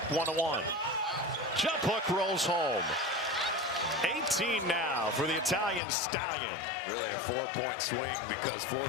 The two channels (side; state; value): right; drops out; at 5.8 s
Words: 1-1. Jump hook rolls home. 18 now for the Italian Stallion. Really a 4-point swing because